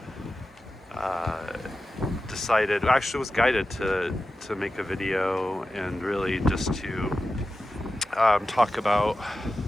was guided to make a video and really just to talk about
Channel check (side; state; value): both; normal; correlation 0.93